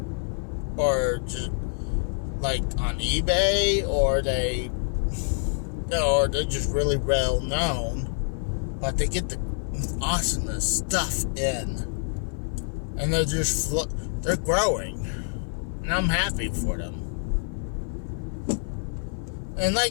or just like on eBay, or they're just really well known. But they get the awesomest stuff in, and they're growing, and I'm happy for them. And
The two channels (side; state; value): right; silent; 55 dB below the other